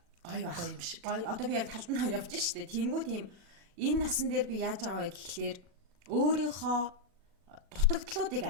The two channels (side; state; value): left; late; 40 ms